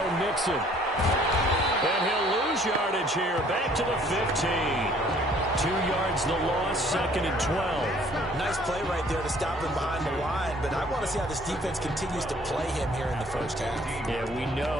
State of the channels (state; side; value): normal; both; correlation 0.58